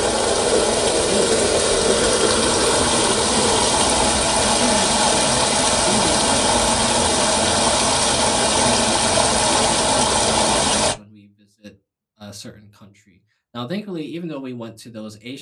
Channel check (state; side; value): identical; both; correlation 1.00